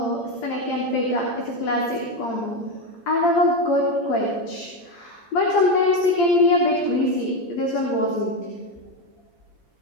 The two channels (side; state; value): right; late; 8.7 ms